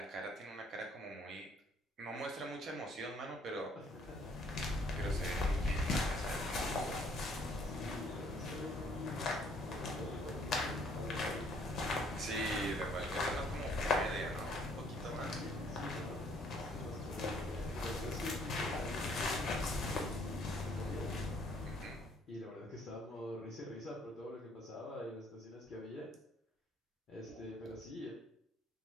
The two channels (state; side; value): normal; both; correlation 0.63